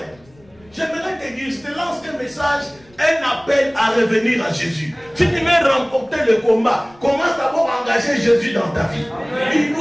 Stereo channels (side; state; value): left; noise; rumble, 29 dB below the sound